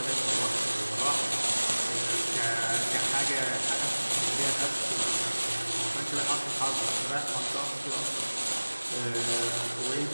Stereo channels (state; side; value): inverted; both; correlation -1.00